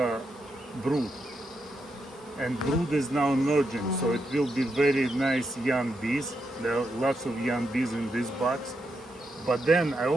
brood, and brood is now emerging. So it will be very nice young bees. There are lots of young bees in this box. But then I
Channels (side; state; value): both; normal; correlation 0.83